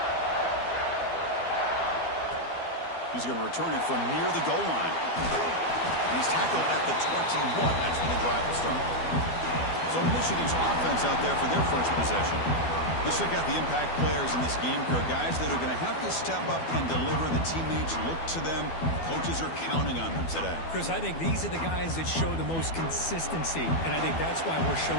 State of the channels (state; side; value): late; right; 12 ms